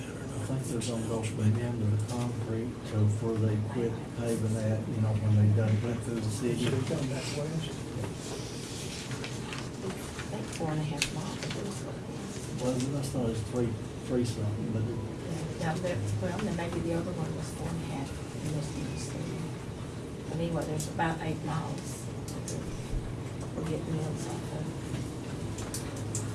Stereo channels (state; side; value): identical; both; correlation 1.00